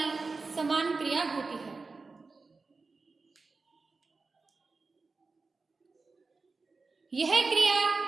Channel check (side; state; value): left; quieter; 4.1 dB